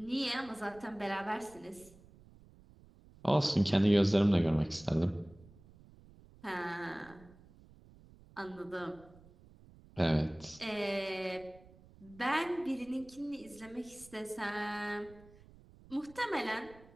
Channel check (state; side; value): noise; right; rumble, 23 dB below the sound